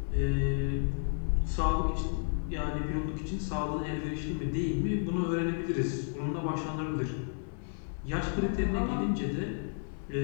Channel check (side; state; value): right; silent; 56 dB below the other